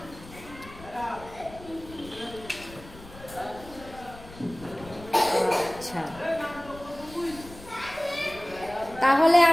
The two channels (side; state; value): left; noise; rumble, 18 dB below the sound